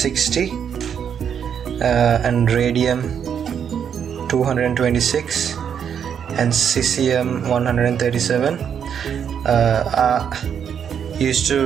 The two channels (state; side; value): quieter; left; 8.0 dB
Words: and radium 226 and cesium 137 are used